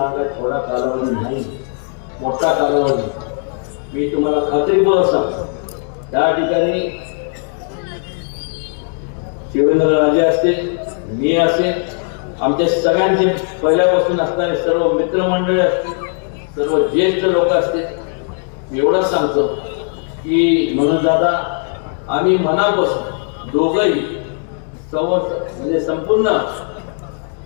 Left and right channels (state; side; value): silent; right; 56 dB below the other